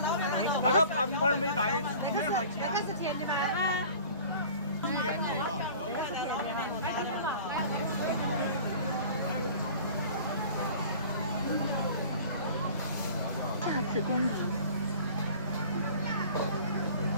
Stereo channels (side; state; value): both; inverted; correlation -0.44